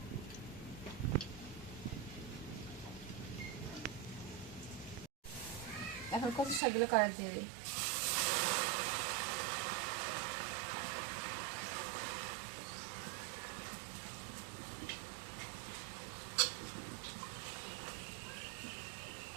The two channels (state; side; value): drops out; left; at 6.6 s